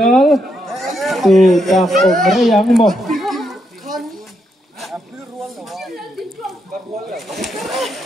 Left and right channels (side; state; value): both; normal; correlation 0.80